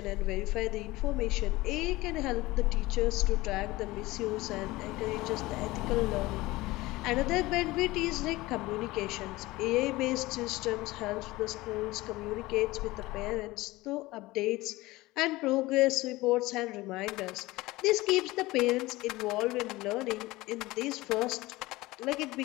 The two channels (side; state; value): right; quieter; 19.7 dB